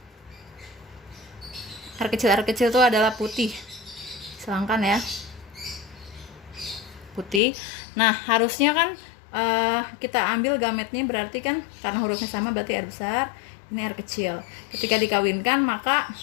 Air kecil itu adalah putih. Silangkan ya. Putih. Nah, harusnya kan kita ambil gametnya, berarti kan karena hurufnya sama berarti air besar, ini air kecil. Ketika dikawinkan, maka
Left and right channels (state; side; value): drops out; right; at 7.4 s